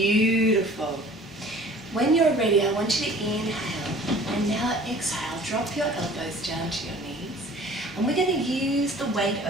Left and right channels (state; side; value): normal; both; correlation 0.48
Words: When you're ready, I want you to inhale and now exhale. Drop your elbows down to your knees. And we're going to use the weight